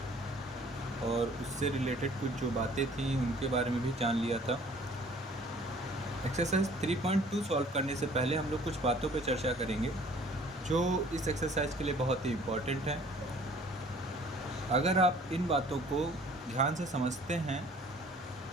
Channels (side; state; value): both; normal; correlation 0.53